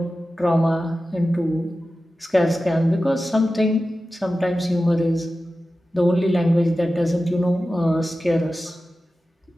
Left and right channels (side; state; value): both; normal; correlation 0.94